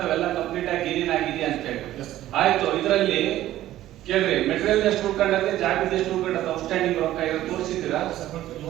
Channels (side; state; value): left; quieter; 14.0 dB